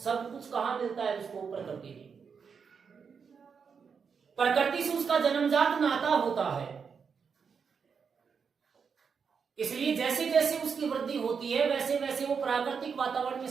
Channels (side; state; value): left; quieter; 6.1 dB